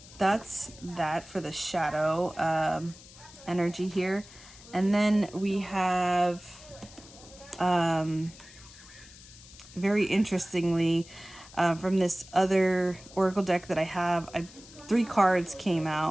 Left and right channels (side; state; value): left; noise; hiss, 20 dB below the sound